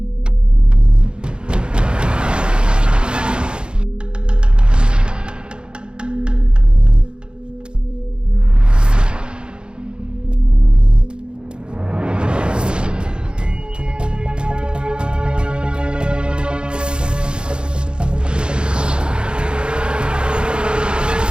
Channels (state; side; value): late; left; 0.051 ms